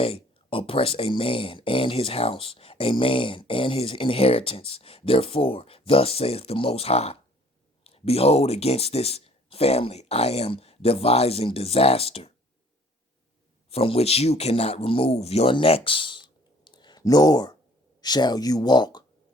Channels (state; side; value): normal; both; correlation 0.56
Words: oppress a man and his house, a man and his inheritance. Therefore, thus saith the Most High, behold, against this family I am devising disaster, from which you cannot remove your necks, nor shall you walk